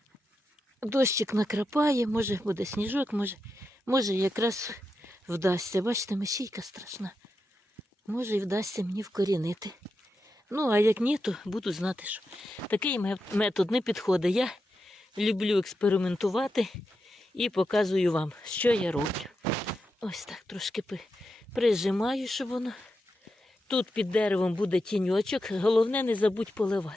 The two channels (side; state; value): both; normal; correlation 0.88